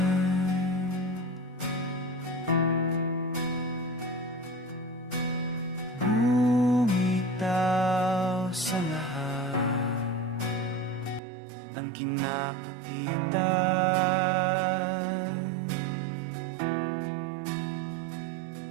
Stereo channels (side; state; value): left; drops out; at 11.2 s